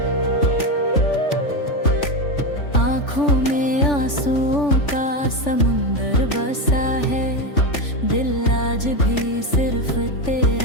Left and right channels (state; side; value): late; right; 3.4 ms